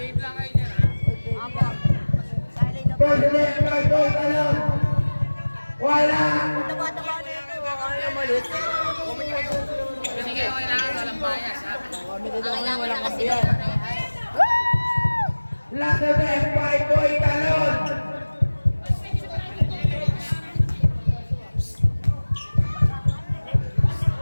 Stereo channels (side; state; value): both; inverted; correlation -1.00